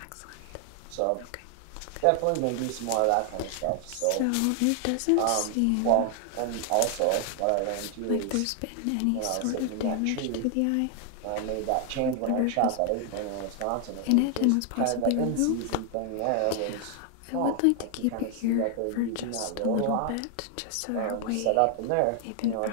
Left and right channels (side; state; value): both; different; correlation 0.00